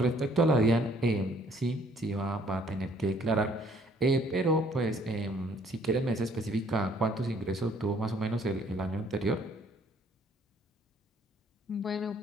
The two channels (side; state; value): both; normal; correlation 0.61